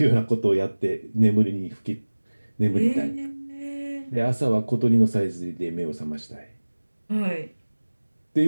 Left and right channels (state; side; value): inverted; both; correlation -1.00